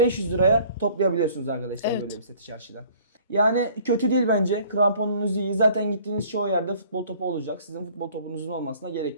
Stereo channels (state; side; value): inverted; both; correlation -0.53